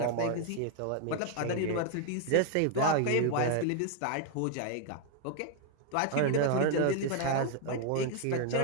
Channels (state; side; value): different; both; correlation 0.00